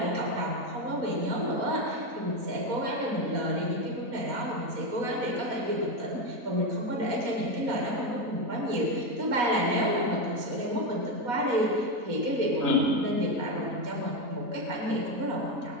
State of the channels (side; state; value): left; late; 4.2 ms